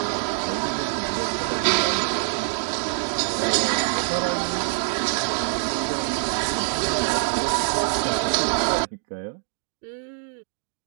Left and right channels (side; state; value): left; silent; 61 dB below the other